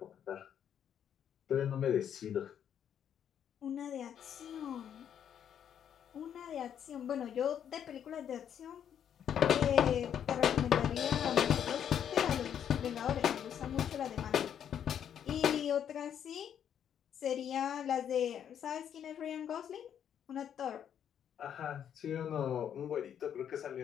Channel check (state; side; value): quieter; right; 9.1 dB